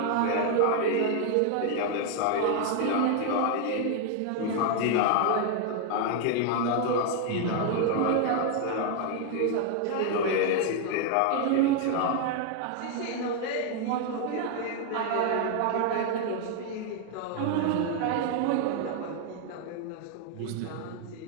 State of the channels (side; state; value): both; different; correlation 0.00